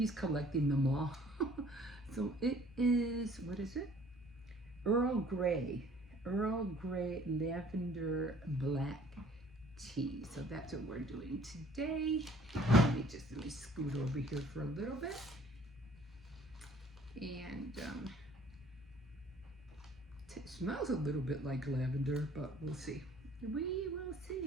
collecting them all. So it is, what is it? Earl Grey lavender black tea. So that's what we're doing today. Let me scoot over here for a little bit. And it smells a little bit like lavender, but we'll see. We will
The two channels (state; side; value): normal; both; correlation 0.55